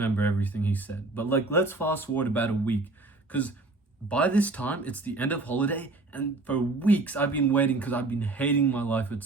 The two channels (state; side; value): quieter; left; 3.2 dB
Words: everything he said, but like, let's fast forward about a week, because by this time it's the end of holiday, and for weeks I've been waiting because I've been hating my life at